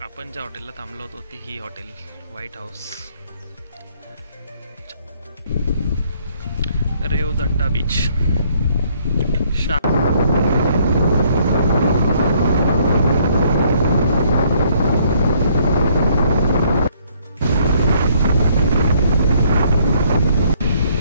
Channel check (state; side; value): inverted; both; correlation -0.65